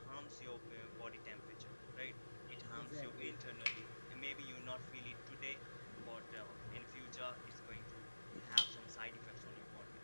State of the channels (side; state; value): both; inverted; correlation -1.00